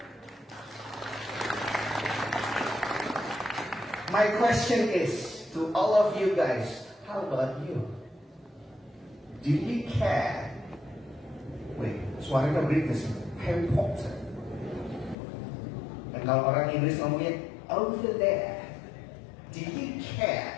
My question is to all of you guys, how about you? Do you care? Wait, suaranya British, Harry Potter. Dan kalau orang Inggris ngomongnya over there, do you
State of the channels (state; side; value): drops out; right; at 15.2 s